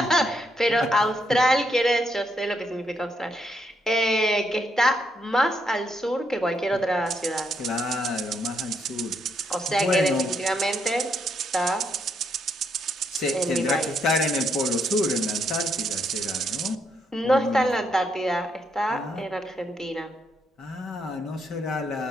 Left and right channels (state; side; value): normal; both; correlation 0.76